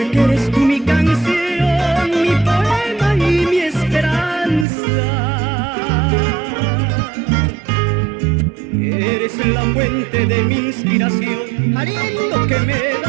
eres tú mi canción, mi poema y mi esperanza. Eres la fuente de mi inspiración, aliento que me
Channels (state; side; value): drops out; left; at 4.7 s